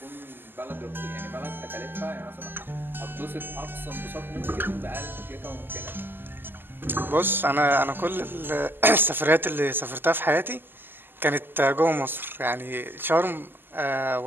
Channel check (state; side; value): late; left; 0.095 ms